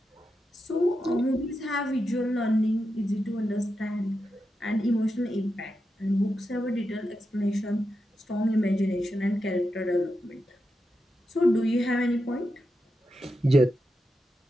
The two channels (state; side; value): normal; both; correlation 0.88